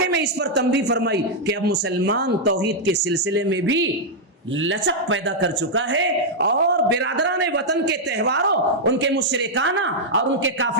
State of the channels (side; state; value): both; normal; correlation -0.04